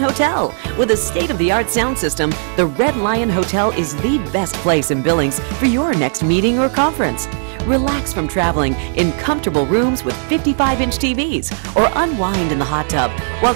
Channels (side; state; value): left; silent; 62 dB below the other